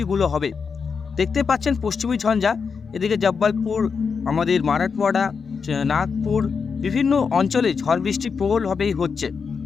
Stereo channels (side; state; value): right; quieter; 5.7 dB